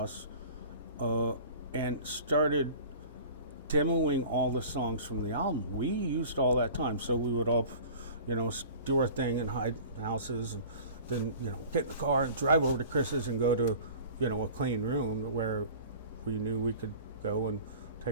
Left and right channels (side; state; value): both; inverted; correlation -0.43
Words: and started demoing all the songs from the album. We used all that time, so we would all, do our thing and hide in houses, and then, get in the car and drive over to Chris's and go to, a clean room where we knew we could go and